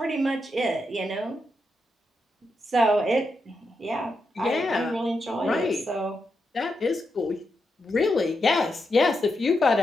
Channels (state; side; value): normal; both; correlation 0.84